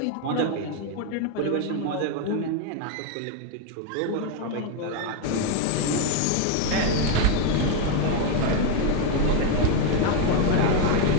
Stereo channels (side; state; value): both; different; correlation 0.01